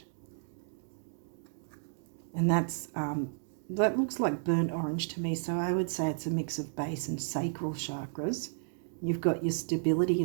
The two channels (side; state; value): left; silent; digital silence